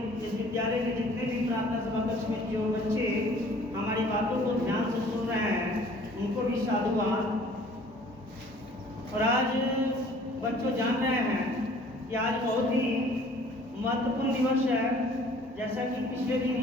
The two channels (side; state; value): both; normal; correlation 0.53